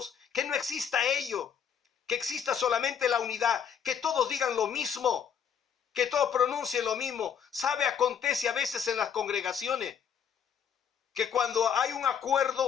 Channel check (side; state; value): right; quieter; 7.8 dB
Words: que no exista ello, que exista solamente la unidad, que todos digan lo mismo, que todos pronuncien lo mismo. ¿Sabe? Acontece a veces en las congregaciones que cuando hay un